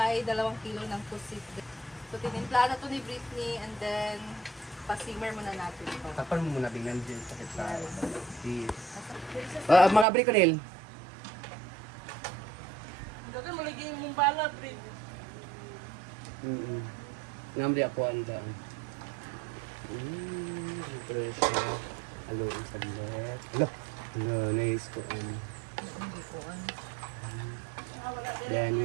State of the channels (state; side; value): drops out; left; at 10.1 s